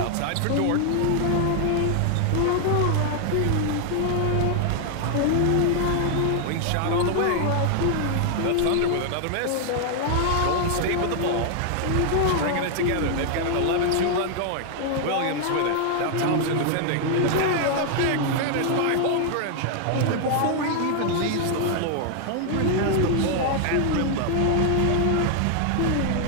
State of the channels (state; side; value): different; both; correlation 0.00